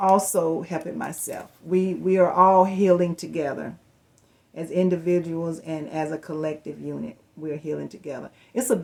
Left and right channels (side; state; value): both; identical; correlation 1.00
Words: We are all healing together as individuals and as a collective unit. We're healing together. It's a